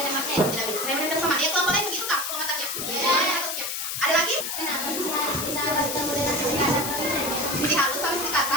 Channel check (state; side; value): noise; left; hiss, 3 dB below the sound